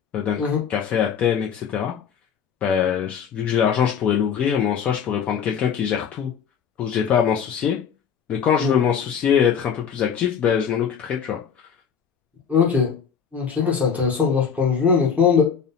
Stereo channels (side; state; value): right; quieter; 7.2 dB